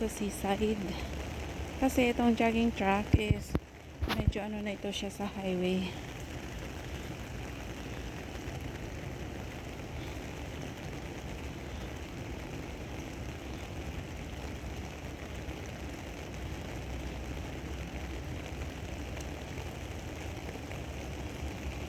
seaside. Kasi itong jogging track is medyo ano na ito siya sa highway.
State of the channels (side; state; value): both; identical; correlation 1.00